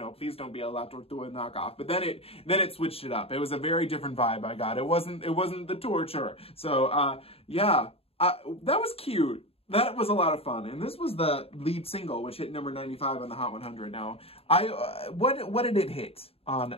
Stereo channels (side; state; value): right; late; 0.28 ms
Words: please don't be a La Tortuga knockoff. But then it switched it up. It was a very different vibe I got. It wasn't the torture. So yeah, that was cute. That was a lot of fun. And this was the lead single, which hit number 95 on the Hot 100. Now, what did it hit